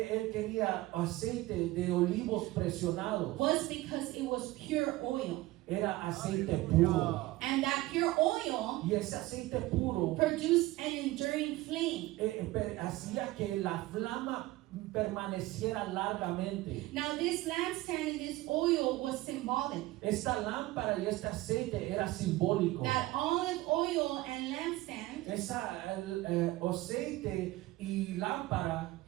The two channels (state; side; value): quieter; left; 18.3 dB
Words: él quería aceite de olivos presionados was because it was pure oil. era aceite puro. And that pure oil Y ese aceite puro produced an enduring flame. hacía que la flama permaneciera largamente. Now this lampstand and this oil was symbolic. Esta lámpara y este aceite era simbólico. That olive oil and lampstand Aceite y lámpara